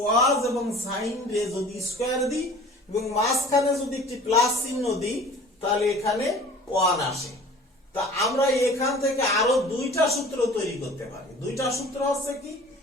এবং সাইন রে যদি স্কয়ার দিই এবং মাঝখানে যদি একটি প্লাস চিহ্ন দিই, তাহলে এখানে 1 আসে। তা আমরা এখান থেকে আরো দুইটা সূত্র তৈরি করতে পারি। দুইটা সূত্র হচ্ছে কি,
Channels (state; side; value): normal; both; correlation 0.45